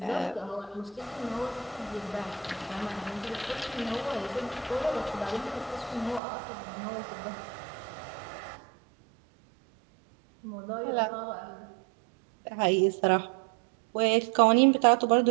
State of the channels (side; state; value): left; drops out; at 6.2 s